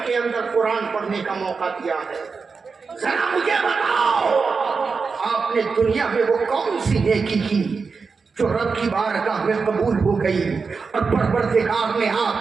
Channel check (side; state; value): left; quieter; 4.9 dB